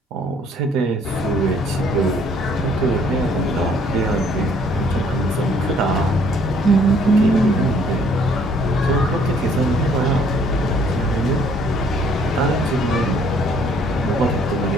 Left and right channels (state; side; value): normal; both; correlation 0.61